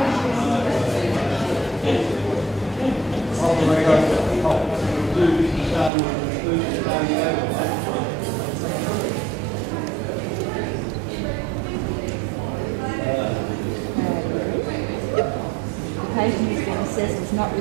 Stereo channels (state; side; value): drops out; left; at 5.9 s